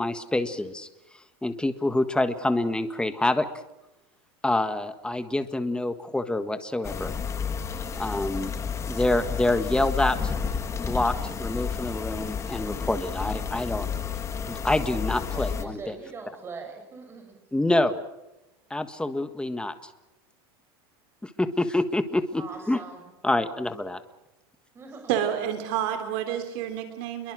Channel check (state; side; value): normal; both; correlation 0.81